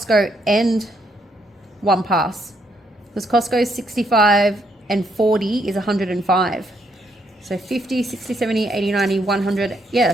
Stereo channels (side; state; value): both; normal; correlation 0.74